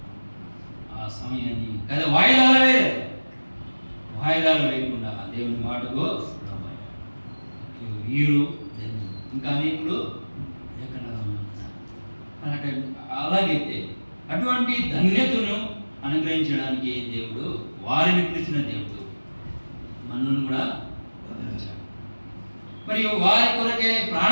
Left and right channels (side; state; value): both; inverted; correlation -1.00